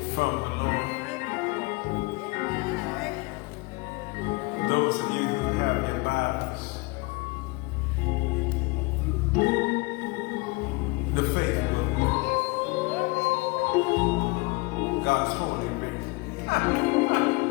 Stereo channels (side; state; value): right; quieter; 25.8 dB